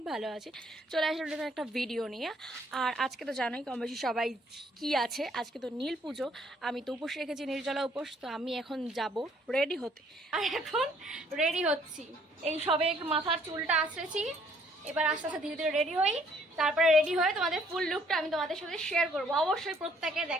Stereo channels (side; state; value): both; normal; correlation 0.64